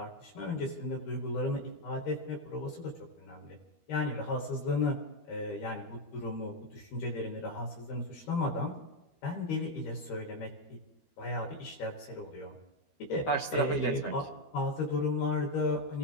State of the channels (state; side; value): late; right; 13 ms